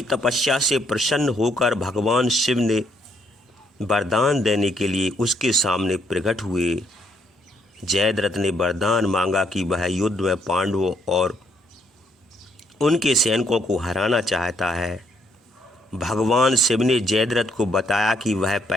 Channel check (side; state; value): both; normal; correlation 0.71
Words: तपस्या से प्रसन्न होकर भगवान शिव ने वरदान देने के लिए उसके सामने प्रकट हुए। जयद्रथ ने वरदान मांगा कि वह युद्ध में पांडवों और उनके सैनिकों को हराना चाहता है। भगवान शिव ने जयद्रथ को बताया कि वह